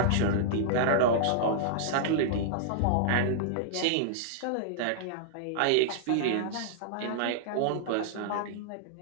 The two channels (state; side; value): different; both; correlation -0.01